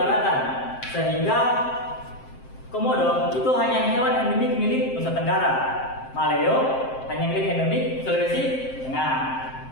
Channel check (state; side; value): late; right; 7.6 ms